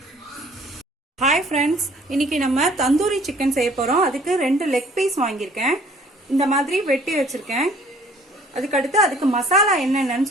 ஹாய் ஃப்ரெண்ட்ஸ், இன்னைக்கு நம்ம தந்தூரி சிக்கன் செய்ய போறோம். அதுக்கு 2 லெக் பீஸ் வாங்கியிருக்கேன், இந்த மாதிரி வெட்டி வச்சிருக்கேன். அதுக்கடுத்து அதுக்கு மசாலா என்னென்னு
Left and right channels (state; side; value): normal; both; correlation 0.56